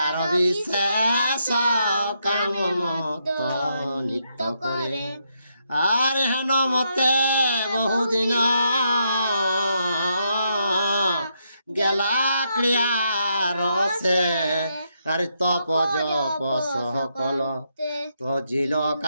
বিশেষ কাম মত নিত্য করে। আর হেন মতে বহুদিন গেলা ক্রিয়ার সে আর তপ জপ সকল তজিল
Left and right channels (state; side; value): inverted; both; correlation -0.79